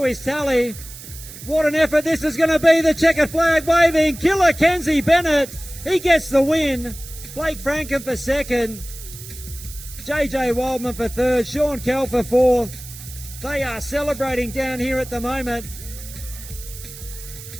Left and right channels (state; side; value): noise; right; hiss, 14 dB below the sound